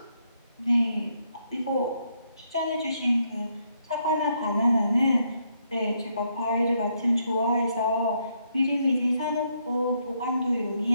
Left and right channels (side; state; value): both; inverted; correlation -0.75